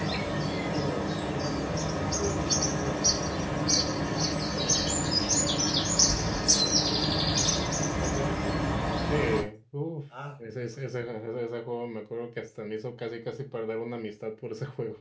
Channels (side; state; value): both; identical; correlation 1.00